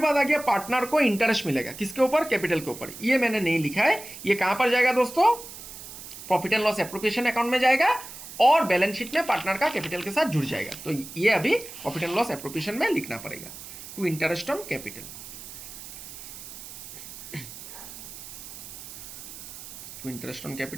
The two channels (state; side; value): noise; right; hiss, 13 dB below the sound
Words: आ गया पार्टनर को इंटरेस्ट मिलेगा, किसके ऊपर, कैपिटल के ऊपर, ये मैंने नहीं लिखा है, ये कहाँ पर जाएगा दोस्तों, profit and loss appropriation account में जाएगा, और बैलेंस शीट में पार्टनर का कैपिटल के साथ जुड़ जाएगा, तो ये अभी प्रॉफिट एंड लॉस एप्रोप्रिएशन में लिखना पड़ेगा, टू इंटरेस्ट ऑन कैपिटल। तो इंटरेस्ट ऑन